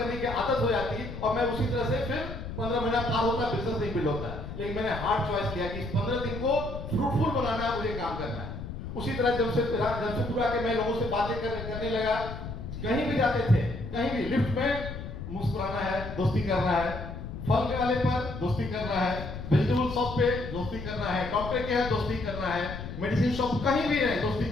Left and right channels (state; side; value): noise; left; rumble, 8 dB below the sound